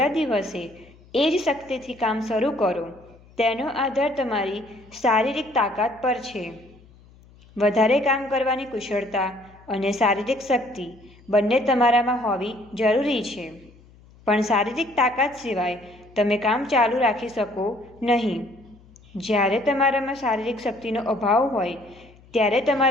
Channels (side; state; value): left; noise; hum, 26 dB below the sound